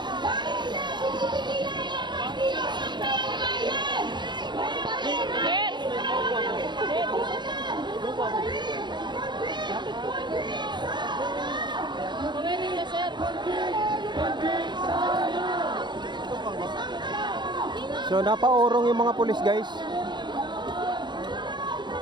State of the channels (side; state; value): left; late; 0.22 ms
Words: So napaurong yung mga pulis guys.